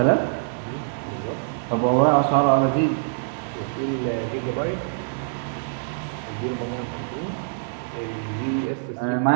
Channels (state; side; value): silent; left; digital silence